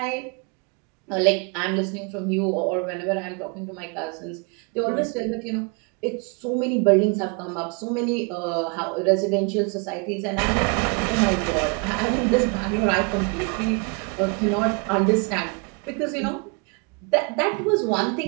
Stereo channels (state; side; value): quieter; left; 33.5 dB